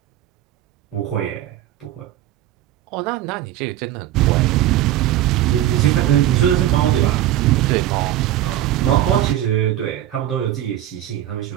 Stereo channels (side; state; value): left; quieter; 13.1 dB